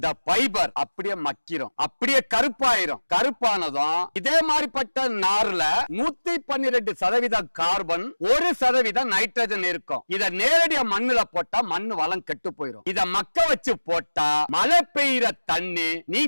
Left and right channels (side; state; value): both; inverted; correlation -1.00